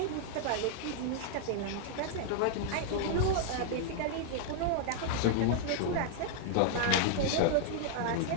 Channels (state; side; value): different; both; correlation -0.01